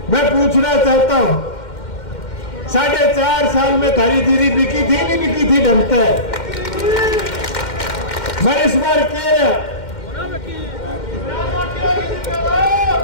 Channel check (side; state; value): right; late; 2.1 ms